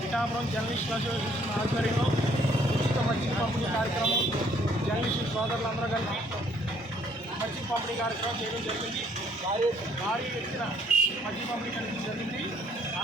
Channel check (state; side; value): normal; both; correlation 0.64